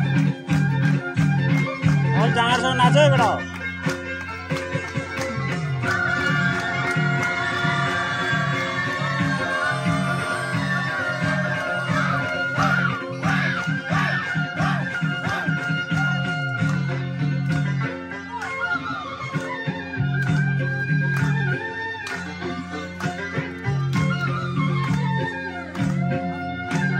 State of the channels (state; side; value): identical; both; correlation 1.00